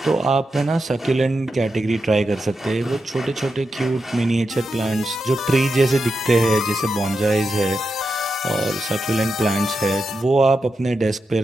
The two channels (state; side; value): normal; both; correlation 0.87